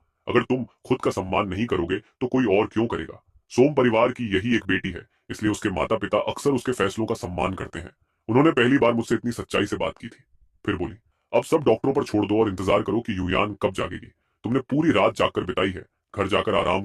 अगर तुम खुद का सम्मान नहीं करोगे तो कोई और क्यों करेगा? सोम परिवार की यही एक बेटी है, इसलिए उसके माता पिता अक्सर उसके फैसलों का सम्मान करते हैं। उन्होंने पहली बार मुझसे इतनी सच्चाई से बात की थी। फिर बोली, अब सब डॉक्टरों पर छोड़ दो और इंतजार करो कि युयान कब जागेगी। तुमने पूरी रात जागकर बिताई है, घर जाकर आराम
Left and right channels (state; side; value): identical; both; correlation 1.00